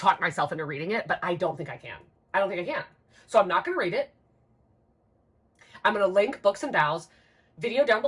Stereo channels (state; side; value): identical; both; correlation 1.00